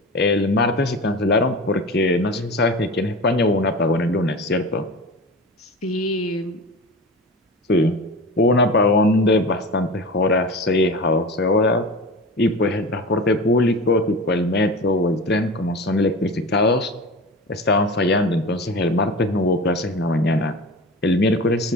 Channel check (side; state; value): both; normal; correlation 0.31